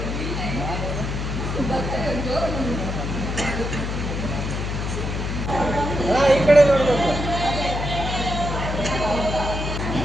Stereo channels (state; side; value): noise; left; hum, 3 dB below the sound